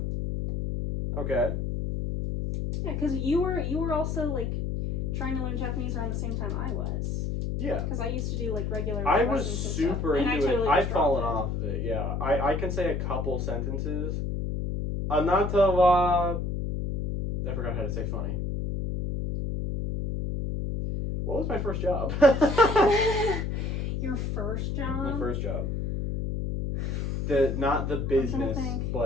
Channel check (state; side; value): noise; left; hum, 2 dB below the sound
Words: Okay. Yeah, because you were also like trying to learn Japanese around the same time I was. Yeah. Because I used to do like regular. I was lessons and super stuff, and into totally it. I've just dropped fallen it. off of it, yeah. I can say a couple sentences. Anata wa... I forgot how to say funny. What was my first job? Your first job? My first job. Not the business,